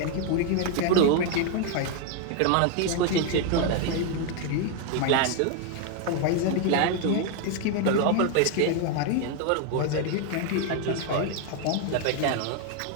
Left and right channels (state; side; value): different; both; correlation 0.01